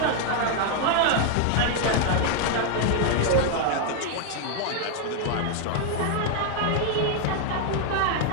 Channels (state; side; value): different; both; correlation 0.00